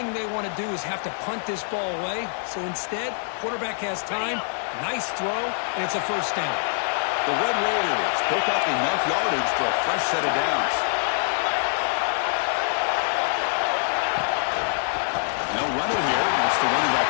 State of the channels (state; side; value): silent; right; digital silence